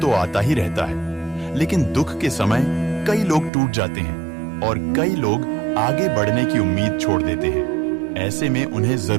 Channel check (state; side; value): drops out; left; at 3.5 s